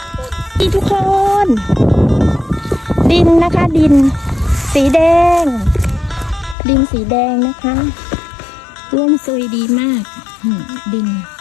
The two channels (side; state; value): right; drops out; at 6.6 s